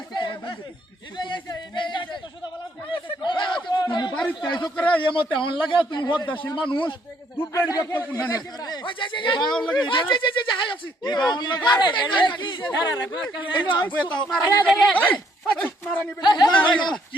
তুমি বাড়িতে আইছো করে এমতে হন লাগে তুমি হদ্দাশীল মানুষ দুবেড়ি ব্যক্ত কোন না বাউল লাগে হাই আছি এই বাউল লাগে মারানি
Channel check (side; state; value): both; normal; correlation 0.68